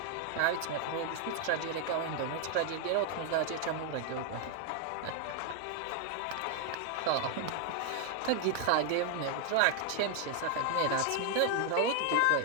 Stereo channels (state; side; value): different; both; correlation 0.00